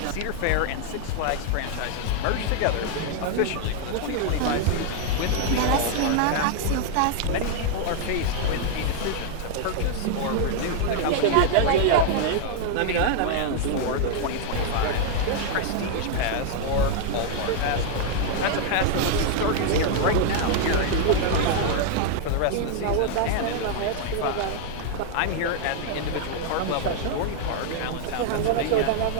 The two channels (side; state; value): both; different; correlation 0.00